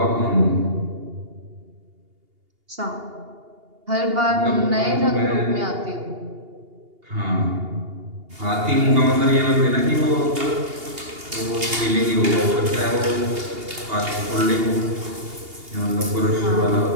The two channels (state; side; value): late; left; 2.8 ms